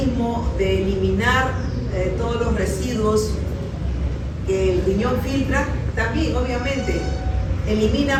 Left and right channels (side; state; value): both; identical; correlation 1.00